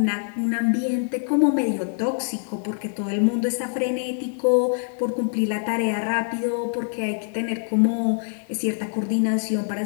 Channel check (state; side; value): silent; right; digital silence